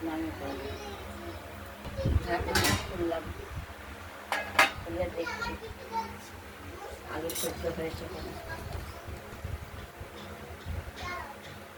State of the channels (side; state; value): both; identical; correlation 1.00